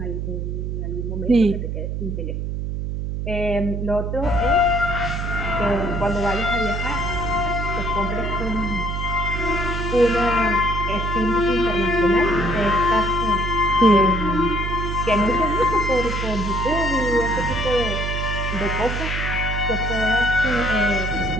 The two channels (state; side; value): noise; right; hum, 3 dB below the sound